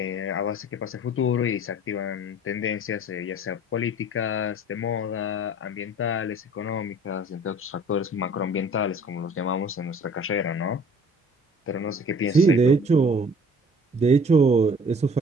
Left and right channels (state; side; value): normal; both; correlation 0.50